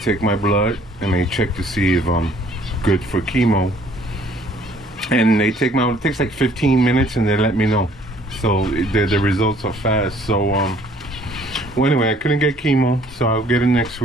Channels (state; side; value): normal; both; correlation 0.59